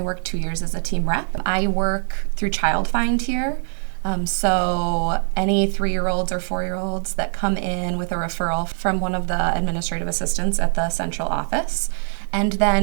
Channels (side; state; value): left; silent; digital silence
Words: worked 2 years as a team rep. I work through Child Find here. So any 3-year-olds or 4-year-olds that come in with a referral from one of the administrative assistants at the central office, and